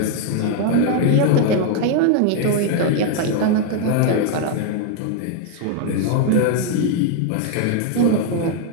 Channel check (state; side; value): different; both; correlation 0.00